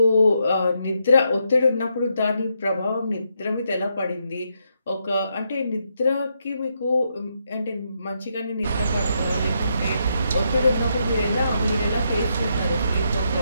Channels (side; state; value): both; inverted; correlation -0.80